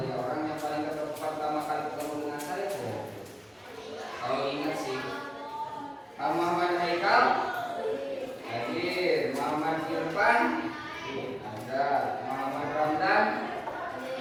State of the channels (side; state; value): both; identical; correlation 1.00